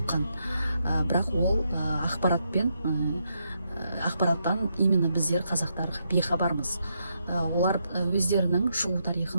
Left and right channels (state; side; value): inverted; both; correlation -0.80